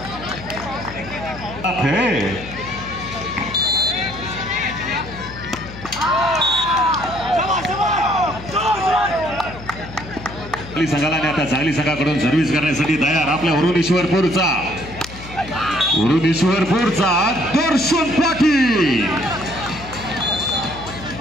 संघाला आता चांगली संघाकडून सर्व्हिस करण्यासाठी तयार आपल्या वरुणेश्वरपूरचा दर्शन पाटील.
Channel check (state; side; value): noise; left; hum, 14 dB below the sound